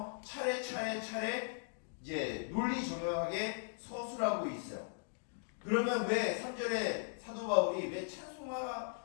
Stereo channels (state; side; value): silent; right; digital silence